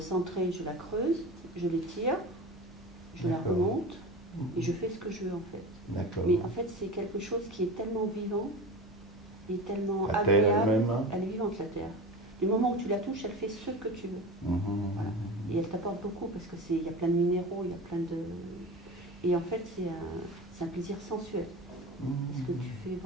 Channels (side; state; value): both; normal; correlation 0.30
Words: je la creuse, je l'étire, je la remonte et je fais ce que je veux en fait. D'accord. Mais en fait, c'est quelque chose qui est tellement vivant et tellement La terre agréable. elle-même, hein? Elle est vivante, la terre. Du moment où tu la touches, elle fait ce que tu veux. Voilà. Et elle t'apporte beaucoup parce que il y a plein de minéraux, il y a plein de... Et en fait, c'est un plaisir sensuel. Parce que tu fais